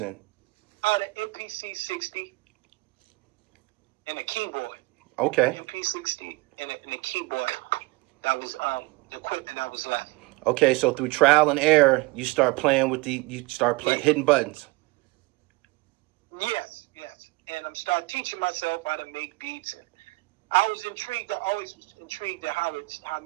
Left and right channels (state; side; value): quieter; left; 23.5 dB